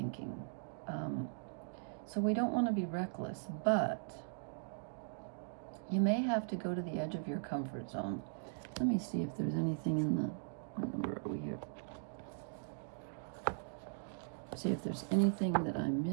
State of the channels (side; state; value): left; silent; digital silence